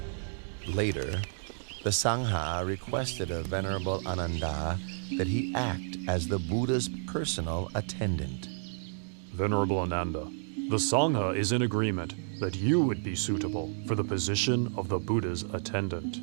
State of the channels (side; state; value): left; silent; digital silence